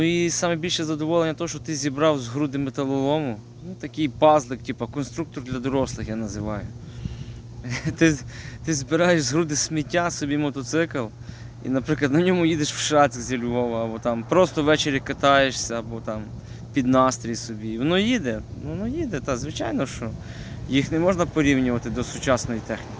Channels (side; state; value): both; identical; correlation 1.00